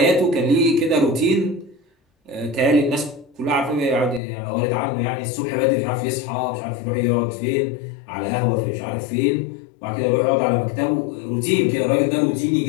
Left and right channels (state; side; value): drops out; right; at 4.2 s